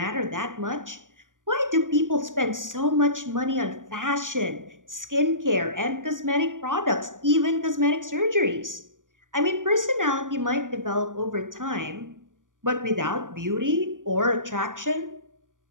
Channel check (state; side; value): late; left; 0.88 ms